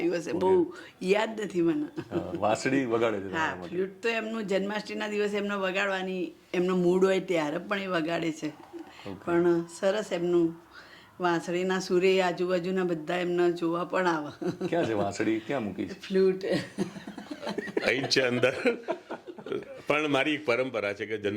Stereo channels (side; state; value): both; identical; correlation 1.00